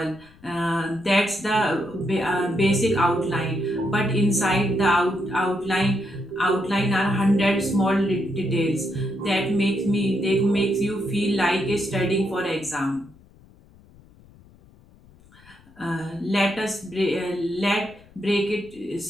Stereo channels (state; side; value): noise; left; rumble, 26 dB below the sound